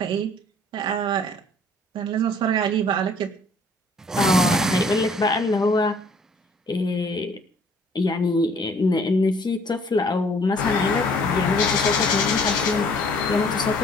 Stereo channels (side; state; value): both; normal; correlation 0.57